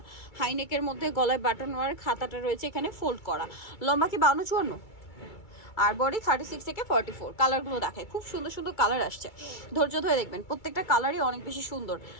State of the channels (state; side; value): late; right; 2.3 ms